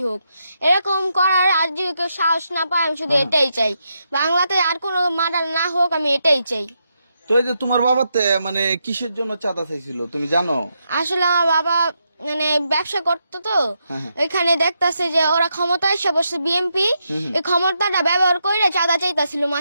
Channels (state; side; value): inverted; both; correlation -0.82